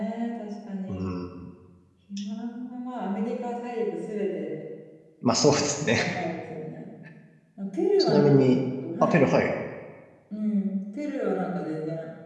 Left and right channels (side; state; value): both; identical; correlation 1.00